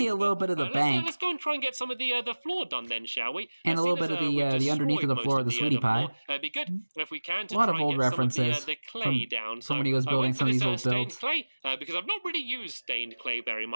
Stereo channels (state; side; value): inverted; both; correlation -1.00